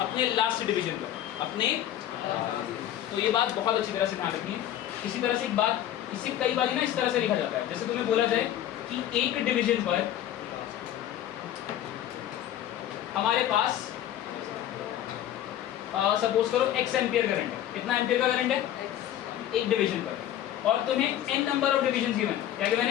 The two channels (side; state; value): right; quieter; 11.9 dB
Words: लास्ट डिवीजन पर, अपने। तो ये बात बहुत अच्छी तरह से ध्यान रखनी है। इसी तरह से एक बात, इसे कई बार ना इस तरह से लिखा जाता है, जैसे तुम्हें बोला जाए कि एक डिवीजन पर हमारे पास सपोज करो x एम्पियर करंट है। कितना एम्पियर का करंट है? एक डिवीजन पर, और तुम्हें n number of division given. क्या गिवन